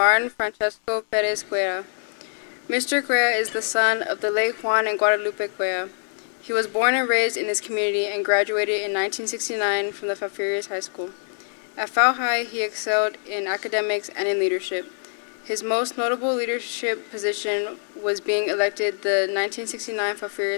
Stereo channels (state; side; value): silent; right; digital silence